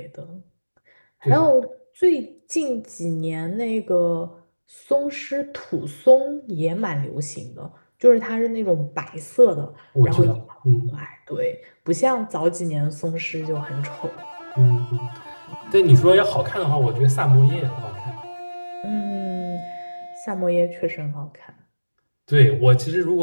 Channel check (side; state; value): both; inverted; correlation -1.00